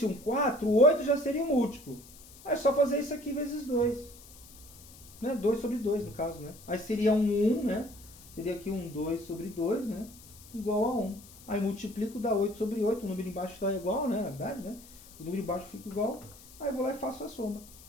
um 4, o 8 já seria um múltiplo. Aí é só fazer isso aqui vezes 2. Né? 2 sobre 2, no caso, né? Aí seria um 1, né? Seria aqui um 2 sobre 2, né? Igual a 1. Aí multiplico, dá 8 sobre 8. O número embaixo está igual, né? Na verdade, né? O número embaixo fica igual. Aí eu vou lá e faço a soma.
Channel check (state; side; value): noise; left; hiss, 20 dB below the sound